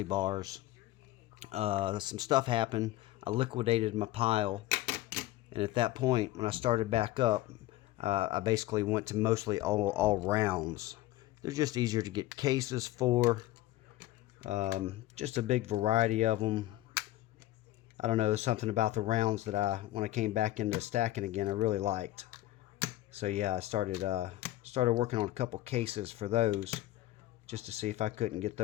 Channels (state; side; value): quieter; right; 15.8 dB